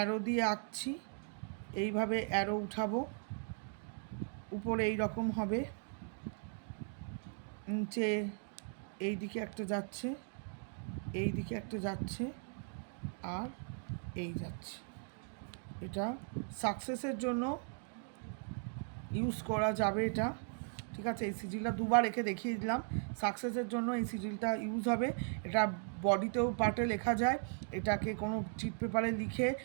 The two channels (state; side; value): silent; left; 52 dB below the other